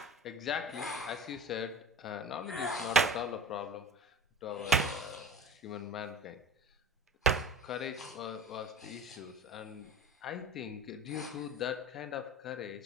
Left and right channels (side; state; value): both; normal; correlation 0.35